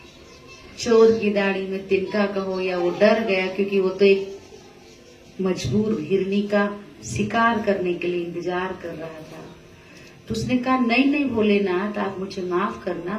चोर की दाढ़ी में तिनका कहो या वो डर गया, क्योंकि वो तो एक मजबूर हिरनी का शिकार करने के लिए इंतजार कर रहा था। तो उसने कहा, नहीं नहीं भोलेनाथ, आप मुझे माफ करना,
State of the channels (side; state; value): both; identical; correlation 1.00